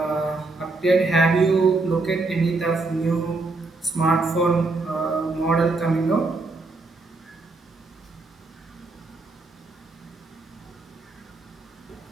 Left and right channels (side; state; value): left; quieter; 3.5 dB